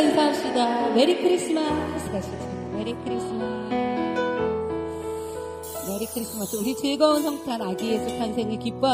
메리 크리스마스 가시죠. 메리 크리스마스. 메리 크리스마스. 우리 즐거운 성탄 아기 예수 탄생을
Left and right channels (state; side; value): identical; both; correlation 1.00